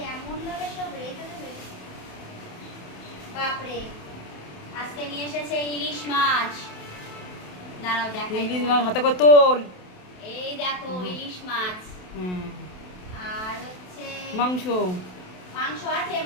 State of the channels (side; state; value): right; late; 27 ms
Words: এমন ভাবে সব রেখে দেবে, বাপরে। আজকে নিয়ে এসেছে ইলিশ মাছ, দাঁড়াও দেখাই। ইলিশ মাছ হাতে করে তোল। এই দেখো ইলিশ মাছ। হুম। আর হচ্ছে মাংস। মাংস আছে,